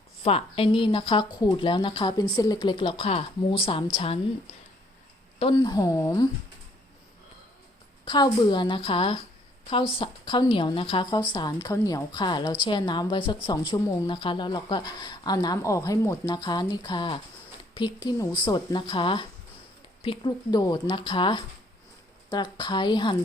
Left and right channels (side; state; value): both; normal; correlation 0.65